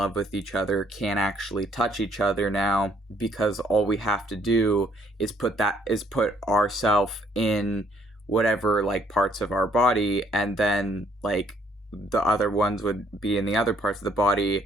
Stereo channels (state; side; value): normal; both; correlation 0.66